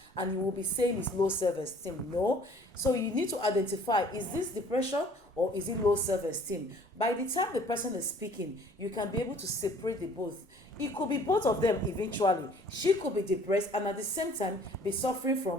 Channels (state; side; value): normal; both; correlation 0.54